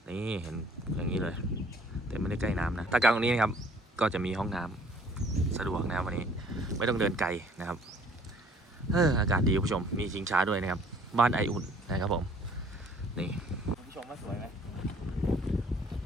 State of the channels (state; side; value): normal; both; correlation 0.57